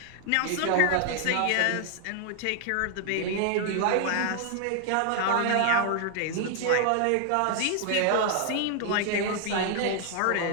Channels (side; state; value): both; different; correlation 0.00